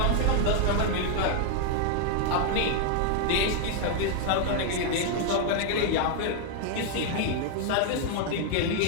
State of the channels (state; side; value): different; both; correlation 0.00